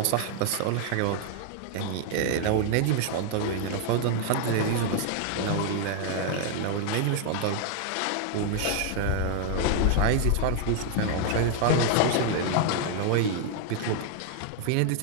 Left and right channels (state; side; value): different; both; correlation 0.00